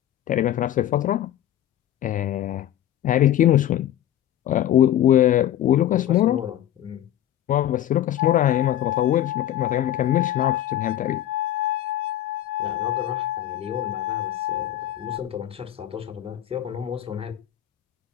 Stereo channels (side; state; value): right; quieter; 12.0 dB